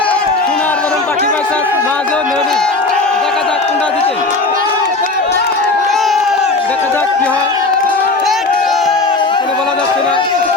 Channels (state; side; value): quieter; right; 3.4 dB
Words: সোনার বরণ পাখি ভার্সেস মা জননী। দেখা যাক কোনটা জিতে, দেখা যাক কি হয়, কোনো বলা যাচ্ছে না